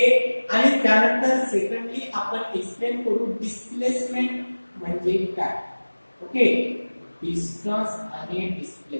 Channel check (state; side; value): inverted; both; correlation -1.00